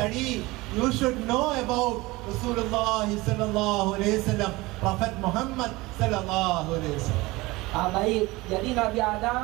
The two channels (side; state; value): left; quieter; 21.4 dB